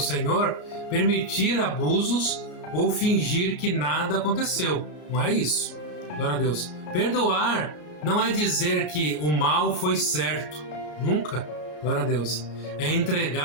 permitir abusos ou fingir que nada aconteceu. Não é isso. Glória a Deus. Perdoar não é dizer que o mal foi certo. Nunca. Glória a Deus. É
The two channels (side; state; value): right; late; 33 ms